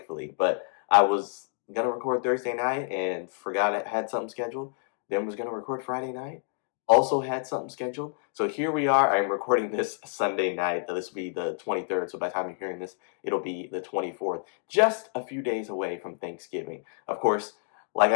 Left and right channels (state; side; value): silent; right; digital silence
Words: But I was going to record Thursday night and forgot I had something scheduled. Then was going to record Friday night. Also had something scheduled. So here we are. I'm recording this Sunday night. This will be the 23rd. So by the time you're hearing this, it'll be the 24th. Just a few days away from Thanksgiving. Of course, like